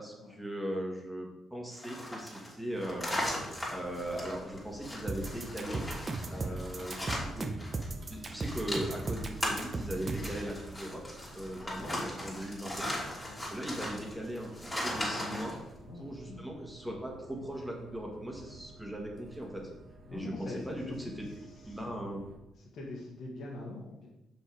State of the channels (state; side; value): normal; both; correlation 0.85